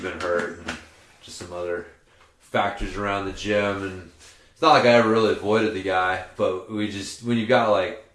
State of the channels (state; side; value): identical; both; correlation 1.00